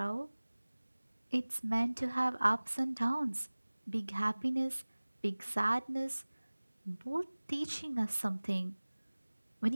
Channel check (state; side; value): inverted; both; correlation -1.00